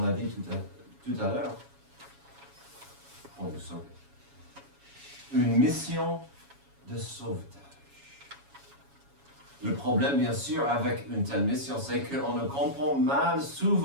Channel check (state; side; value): late; left; 7.2 ms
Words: l'a dit tout à l'heure, pour nous sauver. Une mission de sauvetage. Le problème, bien sûr, avec une telle mission, c'est qu'on ne comprend mal